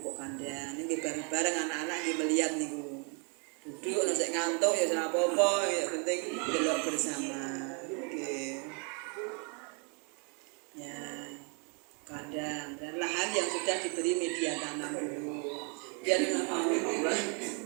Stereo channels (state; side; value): quieter; left; 37.7 dB